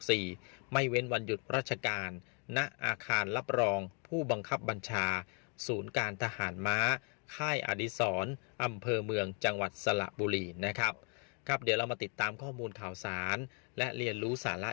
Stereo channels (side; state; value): right; quieter; 37.1 dB